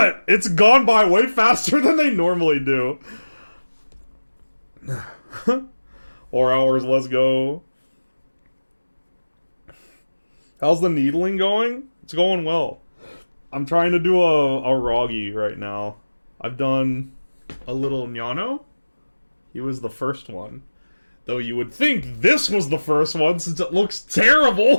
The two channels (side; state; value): both; inverted; correlation -1.00